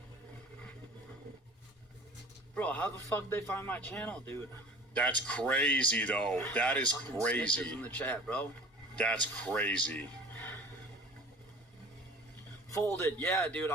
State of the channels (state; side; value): normal; both; correlation 0.43